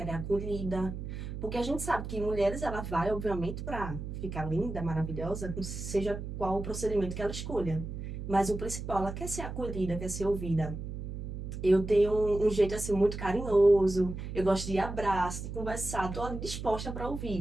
é acolhida. Porque a gente sabe que mulheres, ela vai, obviamente, para ficar linda, maravilhosa, seja qual o procedimento que ela escolha. Mas o principal, ela quer ser acolhida, quer ser ouvida. Eu tenho um jeito assim muito carinhoso, eu gosto de abraço, de conversar, estou disposta para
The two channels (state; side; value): noise; right; hum, 7 dB below the sound